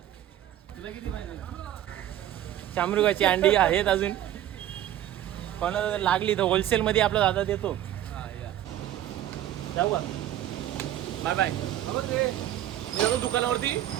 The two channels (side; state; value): left; quieter; 12.3 dB